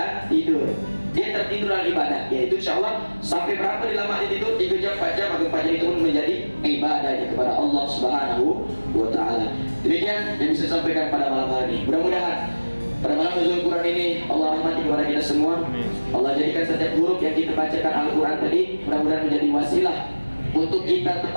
tidur. Dia tertidur dalam ibadah, yaitu insyaallah sampai berapa lama dia tidur? 3 jam, 4 jam, maka 4 jam itu pun menjadi ibadahnya kepada Allah Subhanahu wa Ta'ala. Demikian yang bisa sampaikan pada malam hari ini. Mudah-mudahan pada malam nuzul Quran ini Allah rahmati kepada kita semua. Allah jadikan setiap huruf yang kita bacakan Al-Quran tadi mudah-mudahan menjadi wasilah untuk kita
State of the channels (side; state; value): both; inverted; correlation -1.00